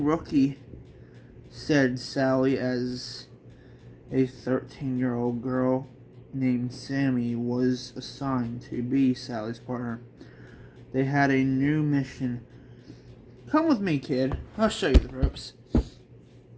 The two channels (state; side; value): identical; both; correlation 1.00